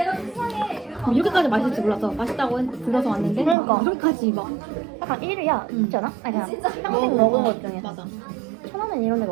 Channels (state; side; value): drops out; left; at 3.6 s